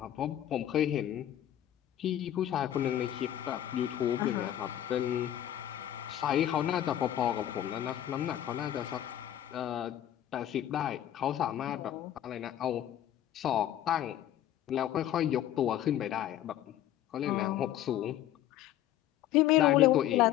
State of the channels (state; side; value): quieter; right; 12.0 dB